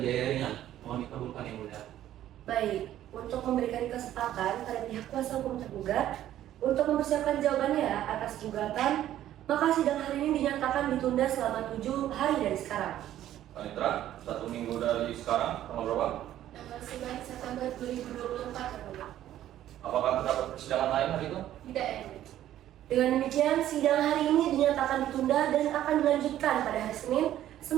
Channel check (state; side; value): quieter; left; 12.4 dB